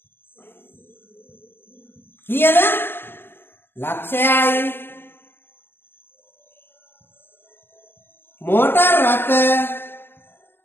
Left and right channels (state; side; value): late; right; 0.10 ms